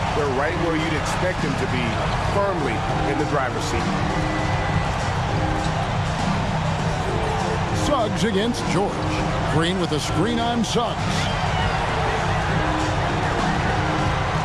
they're right where you'd expect them to be, firmly in the driver's seat. Suggs against George. Green with a screen on Suggs.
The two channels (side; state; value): both; identical; correlation 1.00